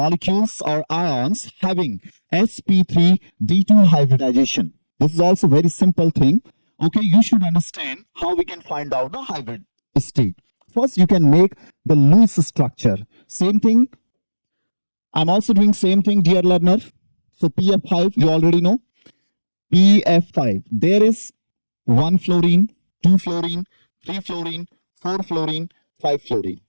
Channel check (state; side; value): inverted; both; correlation -1.00